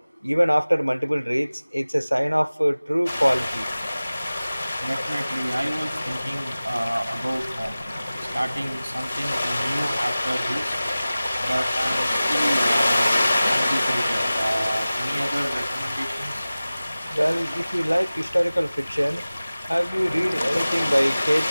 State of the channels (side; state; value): both; inverted; correlation -0.97